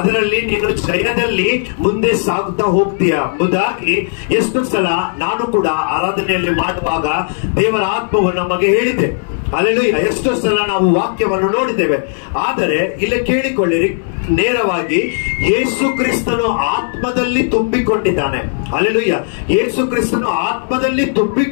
ನೀನು ಜಯದಲ್ಲಿ ಮುಂದೆ ಸಾಗುತ್ತಾ ಹೋಗ್ತೀಯ ಎಂಬುದಾಗಿ ಎಷ್ಟು ಸಲ ನಾನು ಕೂಡ ಆರಾಧನೆಯಲ್ಲಿ ಮಾಡುವಾಗ ದೇವರ ಆತ್ಮವು ನಮಗೆ ಹೇಳಿದೆ. ಹಲ್ಲೆಲೂಯಾ. ಎಷ್ಟೋ ಸಲ ನಾವು ವಾಕ್ಯವನ್ನು ನೋಡಿದ್ದೇವೆ. ಆದರೆ ಇಲ್ಲಿ ಕೇಳಿಕೊಳ್ಳಿರಿ, ನೇರವಾಗಿ ಯೇಸು ಕ್ರಿಸ್ತನು ಆತ್ಮದಲ್ಲಿ ತುಂಬಿಕೊಂಡಿದ್ದಾನೆ. ಹಲ್ಲೆಲೂಯಾ. ಯೇಸು ಕ್ರಿಸ್ತನು ಆತ್ಮದಲ್ಲಿ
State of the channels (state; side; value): silent; right; 68 dB below the other